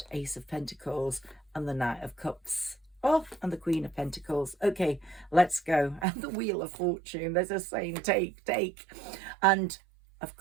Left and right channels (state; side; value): drops out; left; at 6.1 s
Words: Ace of Pentacles and the Knight of Cups. Oh, and the Queen of Pentacles. Okay, let's go. And the Wheel of Fortune. There's a saying, take. And, of